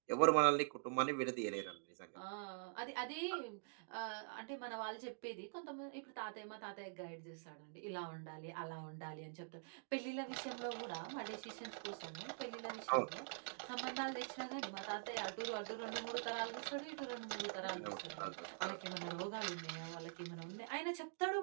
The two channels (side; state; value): left; silent; digital silence